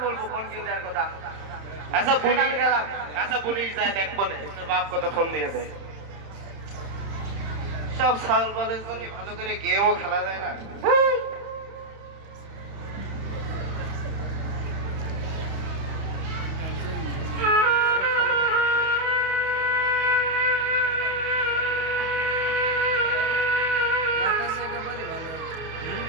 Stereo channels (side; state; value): left; late; 30 ms